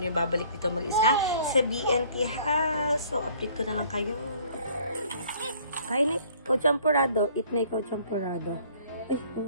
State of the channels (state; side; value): inverted; both; correlation -0.56